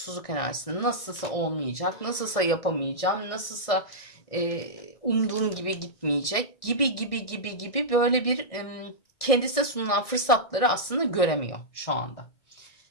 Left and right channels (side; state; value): right; late; 1.6 ms